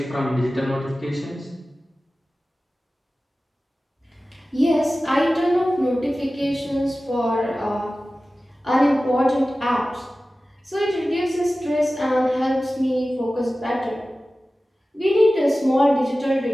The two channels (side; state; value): both; normal; correlation 0.96